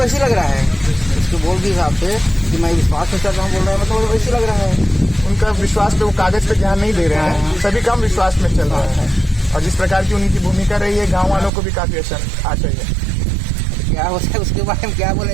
लग रहा है, उसके बोल के हिसाब से कि मैं विश्वास में चल रहा हूँ बोल रहा है, मतलब वैसे लग रहा है। उनका विश्वास पे वो कागज पे ध्यान नहीं दे रहे हैं, सभी काम विश्वास में चल रहा है। और जिस प्रकार की उनकी भूमिका रही है, गाँव वालों को भी काफी अच्छा चाहिए। क्या होता है उसके बारे में क्या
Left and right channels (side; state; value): left; drops out; at 11.5 s